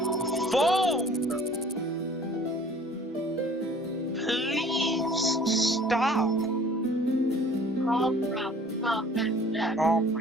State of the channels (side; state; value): both; normal; correlation 0.51